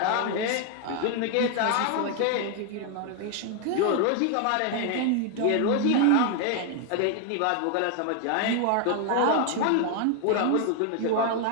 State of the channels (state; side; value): different; both; correlation 0.00